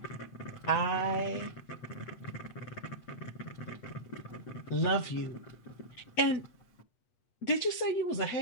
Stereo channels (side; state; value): right; late; 8.3 ms